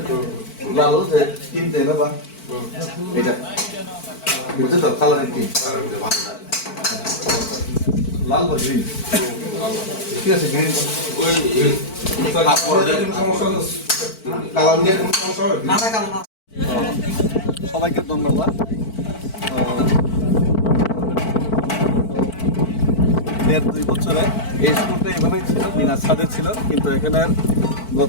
লাল যে তিন দেয় না বা এটা বুঝছো তো কালারের তিন লাল বা গ্রিন ঠিক আছে গ্রিন ওই সমস্যা কালার নিয়ে কোনো সমস্যা হবে ना ना काम ना সবাইকে ধন্যবাদ দেড় দুই বছরে এই স্কুলটা এইভাবেই ছিল বিনা ছাদে ছিল কিন্তু এখানে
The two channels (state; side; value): late; right; 4.5 ms